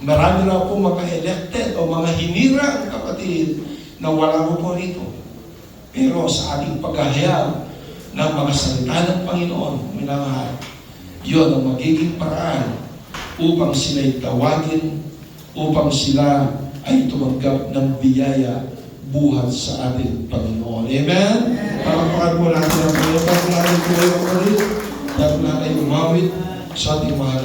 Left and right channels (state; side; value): identical; both; correlation 1.00